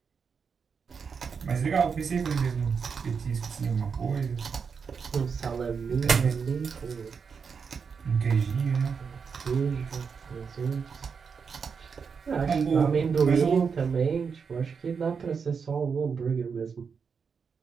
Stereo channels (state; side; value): quieter; left; 5.9 dB